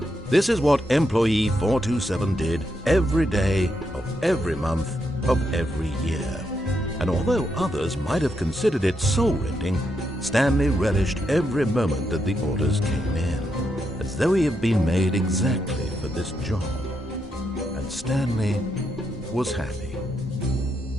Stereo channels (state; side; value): normal; both; correlation 0.81